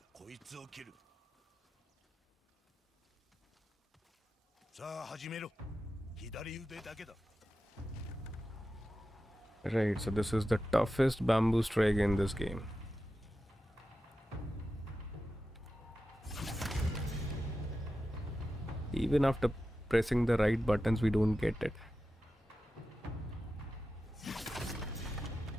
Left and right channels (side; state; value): both; normal; correlation 0.92